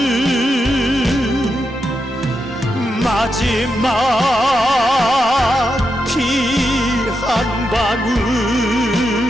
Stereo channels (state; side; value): normal; both; correlation 0.85